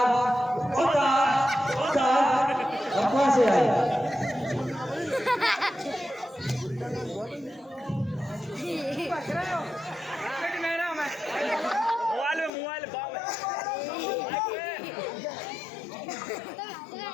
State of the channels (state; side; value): drops out; right; at 12.5 s